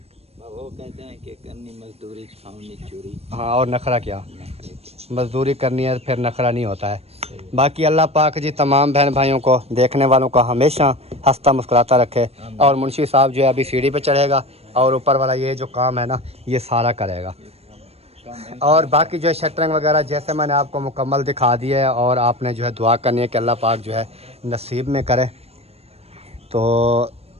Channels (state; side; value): late; left; 0.29 ms